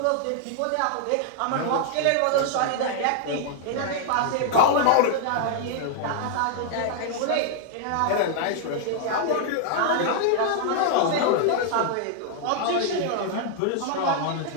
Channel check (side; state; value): both; different; correlation 0.00